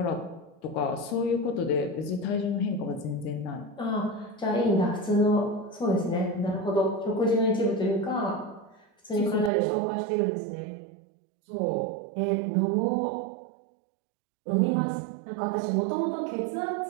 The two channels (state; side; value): drops out; left; at 9.5 s